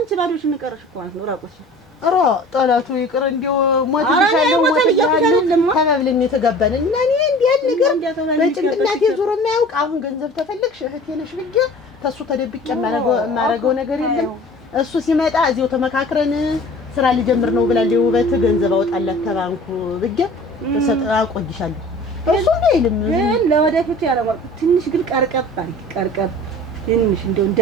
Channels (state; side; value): normal; both; correlation 0.44